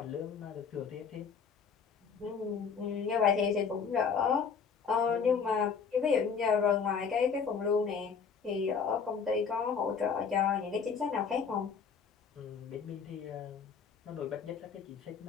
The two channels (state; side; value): quieter; right; 6.1 dB